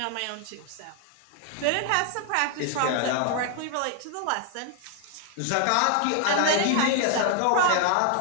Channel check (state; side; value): different; both; correlation 0.00